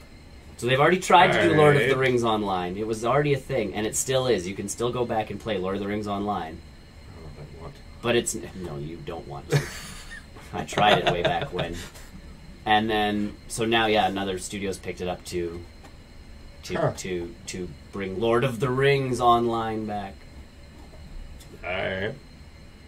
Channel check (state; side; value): identical; both; correlation 1.00